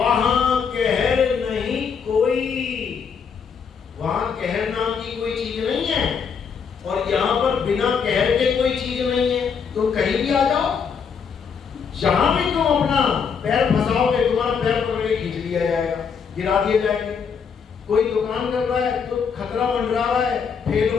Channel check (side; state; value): right; quieter; 6.4 dB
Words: कहर नहीं कोई। वहां कहर नाम की कोई चीज नहीं है, और यहां पर बिना कहर के कोई चीज नहीं है। तो कहीं भी आ जाओ, जहां भी तुम अपना पैर फंसाओगे, तुम्हारा पैर पकड़ के खींच लिया जाएगा, गिरा दिए जाएंगे। कोई दुकान कर रहा है तो खतरा मंडरा रहा है फेल